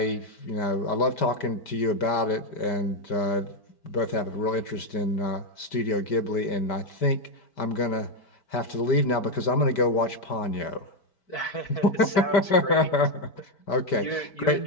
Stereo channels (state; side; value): late; right; 5.1 ms